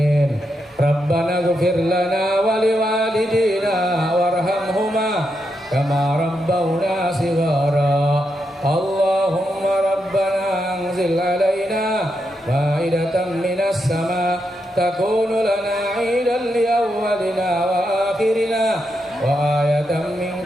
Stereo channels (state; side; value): normal; both; correlation 0.83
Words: Rabbana ighfir lana wa liwalidina warhamhuma kama rabbawna shighara. Allahumma rabbana anzil 'alaina ma'idatan minas sama' تكون لنا عيدا لأولنا وآخرنا وآية